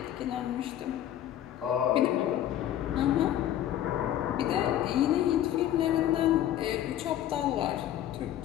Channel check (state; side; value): quieter; right; 11.8 dB